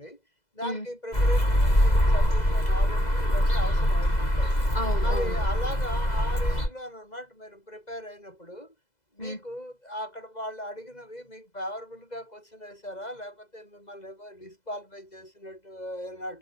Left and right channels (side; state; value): right; late; 2.0 ms